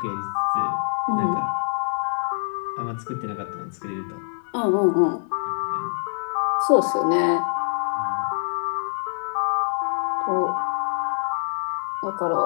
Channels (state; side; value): silent; right; 56 dB below the other